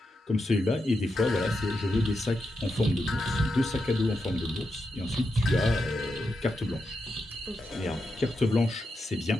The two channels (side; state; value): both; normal; correlation 0.86